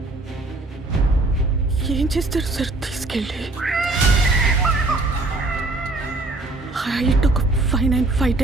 ఏం చేస్తారు సార్ తీసుకెళ్ళి? హైట్ ఒక 5'9",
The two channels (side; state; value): left; quieter; 3.0 dB